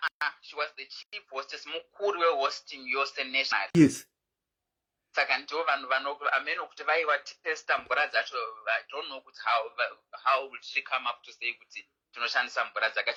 She was the chief hostess, mukuru hosting yose national. Yes. Saka ndo vanhu ameno kuti vaiva testa mvura dzacho. I don't know kuti how would she come up to say kuti tinoshandisa mvura dzaka.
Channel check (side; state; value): both; identical; correlation 1.00